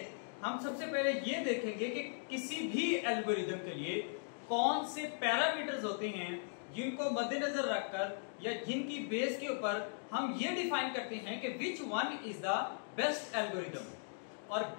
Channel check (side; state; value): right; silent; digital silence